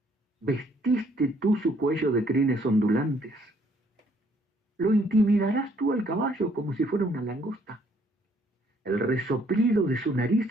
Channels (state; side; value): normal; both; correlation 0.65